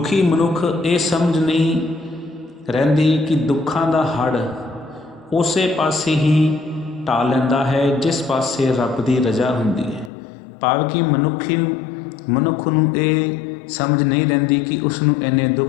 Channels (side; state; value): right; drops out; at 10.1 s